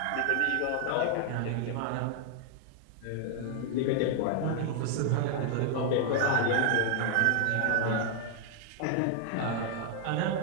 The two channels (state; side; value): different; both; correlation 0.00